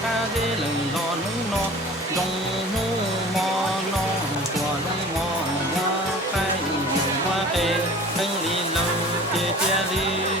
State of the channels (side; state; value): both; normal; correlation 0.43